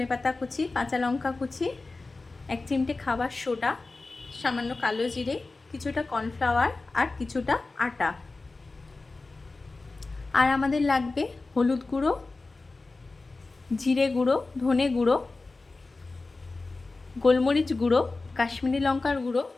কুচি, কাঁচা লঙ্কা কুচি, 1 চিমটে খাবার সোডা, সামান্য কালো জিরে, কিছুটা কর্নফ্লাওয়ার আর কিছুটা আটা। আর আমাদের লাগবে হলুদ গুঁড়ো, জিরে গুঁড়ো, ধনে গুঁড়ো, গোলমরিচ গুঁড়ো, কাশ্মীরি লঙ্কার গুঁড়ো,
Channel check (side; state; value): right; quieter; 3.5 dB